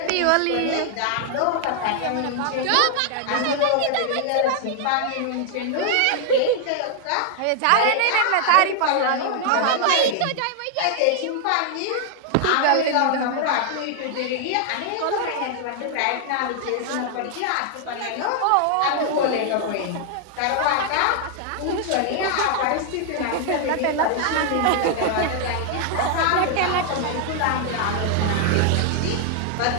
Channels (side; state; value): both; different; correlation 0.00